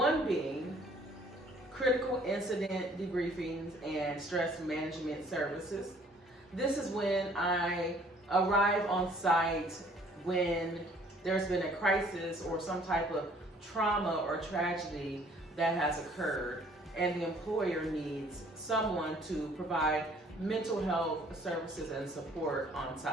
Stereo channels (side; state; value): both; normal; correlation 0.58